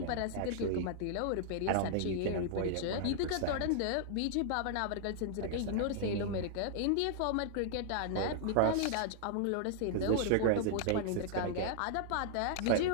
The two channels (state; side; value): different; both; correlation -0.01